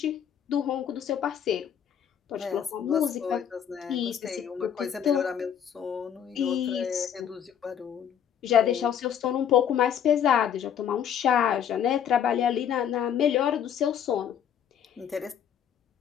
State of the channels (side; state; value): right; quieter; 8.9 dB